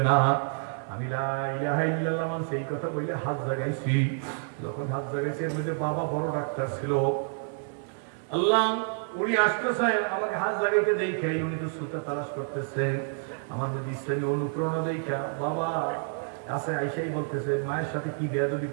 না। আমি লা ইলাহা ইল্লাল্লাহ সেই কথা বলে হাত জাগাইছি। যখন হাত জাগাইছি এর মধ্যে বাবা বড় ডাক্তার ছিল, আল্লাহ উনি আসতেছে আমাকে হাত জাগাইতে দেখে, উনি তো সুতা তালাশ করতেছে, আমার মধ্যে ইসলামী অনুপ্রেরণা দেখা বাবা কাছে আইসাই বলতেছে, মায়ের সাথে কি বেয়াদবি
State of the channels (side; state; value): left; silent; 59 dB below the other